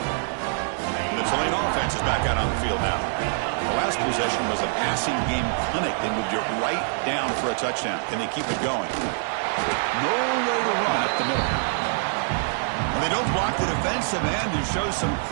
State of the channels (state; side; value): silent; left; digital silence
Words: The Tulane offense is back out on the field now. The last possession was a passing game clinic. They moved it right down for a touchdown. Can they keep it going? No way to run up the middle. Well, they don't block the defensive end and show some